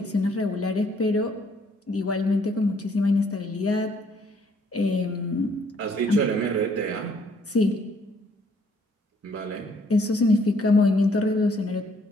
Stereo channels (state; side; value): normal; both; correlation 0.65